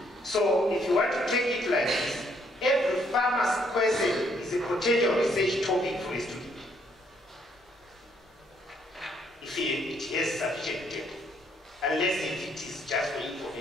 So if you want to take it like this, every farmer's question is a potential research topic for a student. If it has sufficient data, unless if it is just for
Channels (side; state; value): both; normal; correlation 0.69